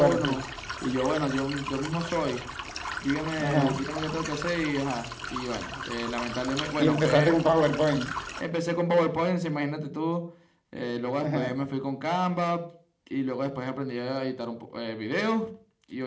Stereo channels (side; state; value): both; identical; correlation 1.00